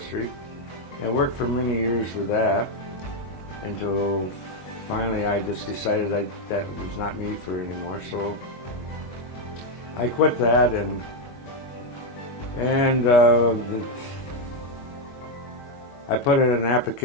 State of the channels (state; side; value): late; right; 22 ms